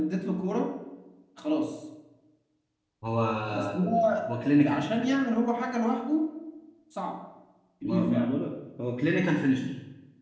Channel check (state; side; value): identical; both; correlation 1.00